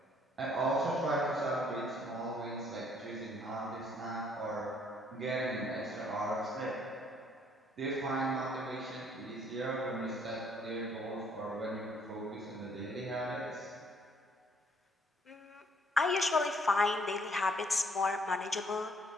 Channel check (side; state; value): both; normal; correlation 0.64